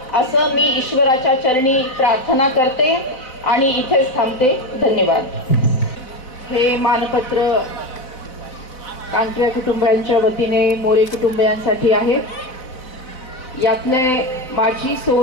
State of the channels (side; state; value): right; late; 4.0 ms